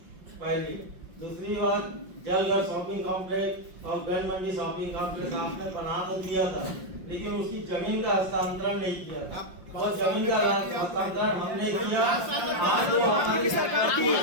पहली दूसरी बात, जलघर शॉपिंग कॉम्प्लेक्स और गन मंडी शॉपिंग कॉम्प्लेक्स आपने बना तो दिया था, लेकिन उसकी जमीन का हस्तांतरण नहीं किया था। और जमीन का हस्तांतरण हमने किया। आज वो हमारी संपत्ति है,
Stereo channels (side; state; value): left; late; 5.7 ms